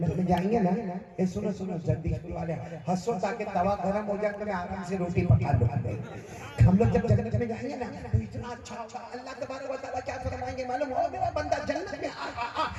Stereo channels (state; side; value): identical; both; correlation 1.00